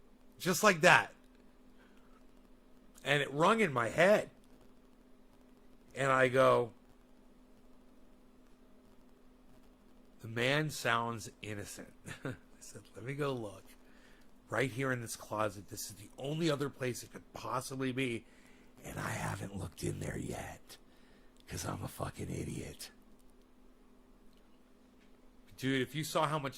Just like that. And it rung in my head. And I go, the man sounds innocent. I said, let me go look. Right here in this closet. This is the only other place it could possibly be. And I haven't looked in there yet. Because I'm a fucking idiot. Dude, if you saw how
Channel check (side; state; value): both; identical; correlation 1.00